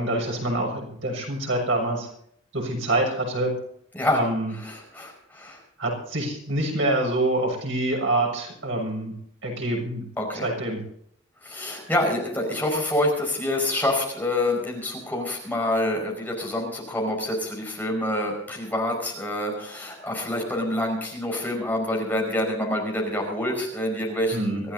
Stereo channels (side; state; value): both; normal; correlation 0.26